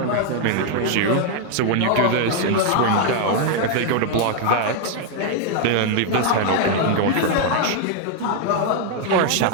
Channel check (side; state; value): both; different; correlation 0.00